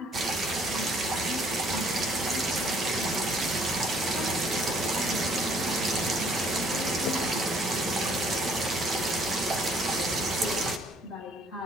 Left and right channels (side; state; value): both; normal; correlation 0.61